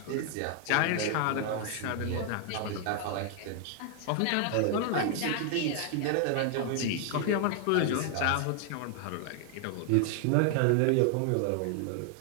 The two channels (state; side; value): different; both; correlation 0.00